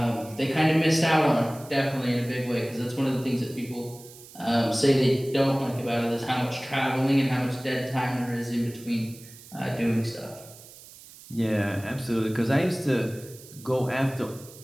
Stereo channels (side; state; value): right; noise; hiss, 19 dB below the sound